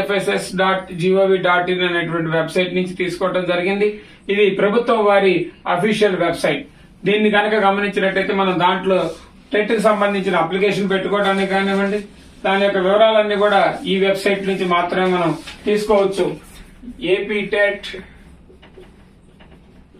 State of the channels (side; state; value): both; identical; correlation 1.00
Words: అనేటువంటి వెబ్సైట్ నుంచి తీసుకోవడం జరిగింది. ఇది ప్రభుత్వం వారి అఫీషియల్ వెబ్సైట్. దీన్ని కనుక గమనించినట్టయితే మనం దాంట్లో టెట్ కి సంబంధించిన అప్లికేషన్ పెట్టుకోవడానికి కానివ్వండి, దాని యొక్క వివరాలన్నీ కూడా ఈ వెబ్సైట్ నుంచి మాత్రమే మనం తీసుకోవచ్చు.